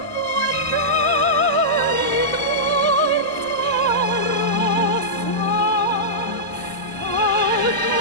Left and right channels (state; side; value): normal; both; correlation -0.13